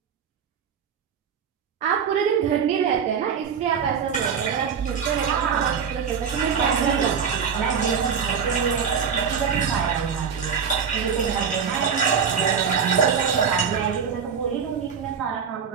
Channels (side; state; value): left; quieter; 6.8 dB